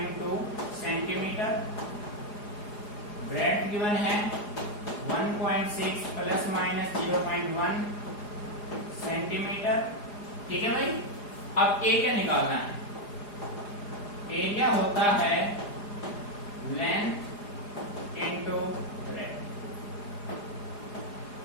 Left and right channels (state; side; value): late; right; 4.9 ms